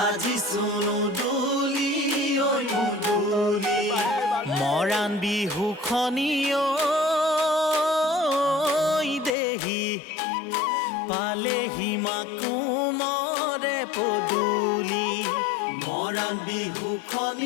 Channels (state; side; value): drops out; right; at 9.3 s